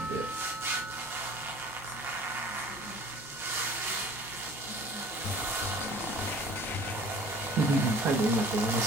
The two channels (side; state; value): both; normal; correlation 0.47